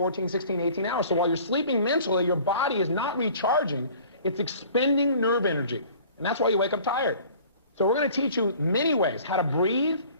16, 18 hours. So while you're sleeping mentally, your body is not recharging. It's expending nerve energy. And that's why you wake up tired. So we're going to teach you many ways how to breathe,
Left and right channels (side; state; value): both; inverted; correlation -0.49